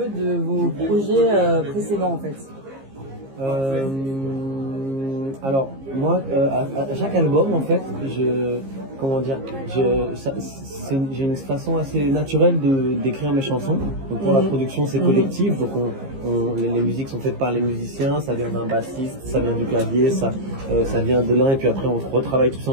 de vos projets précédents en fait? Alors moi, à chaque album en fait, j'ai une façon assez naturelle d'écrire mes chansons. Donc pour la production c'est collectif, donc les musiques sont faites par les musiciens, ça vient d'un bassiste, ça vient du clavier, ça vient de l'un et puis après on retravaille tout ça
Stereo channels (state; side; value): late; left; 15 ms